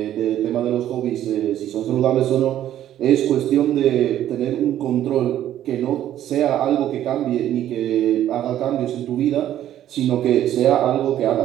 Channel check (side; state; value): left; quieter; 11.9 dB